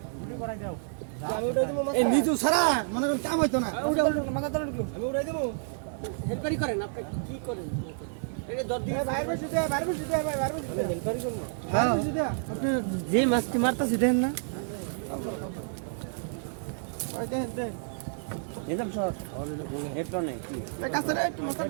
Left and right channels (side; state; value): left; silent; digital silence